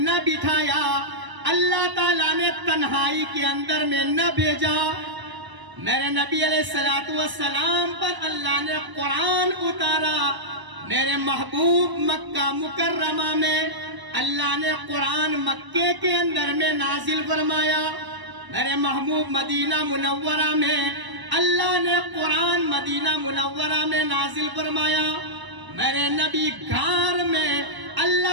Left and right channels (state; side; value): late; left; 1.0 ms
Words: بٹھایا، اللہ تعالیٰ نے تنہائی کے اندر میں نہ بھیجا۔ میرے نبی علیہ السلام پر اللہ نے قرآن اتارا، میرے محبوب مکہ مکرمہ میں اللہ نے قرآن مکے کے اندر میں نازل فرمایا، میرے محبوب مدینہ منورہ میں اللہ نے قرآن مدینہ منورہ میں نازل فرمایا، میرے نبی غار میں